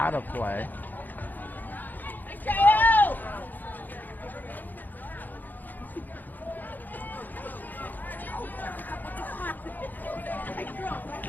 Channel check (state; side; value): late; right; 0.086 ms